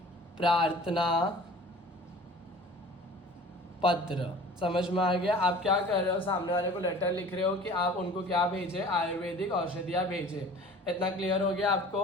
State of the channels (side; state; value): both; normal; correlation 0.45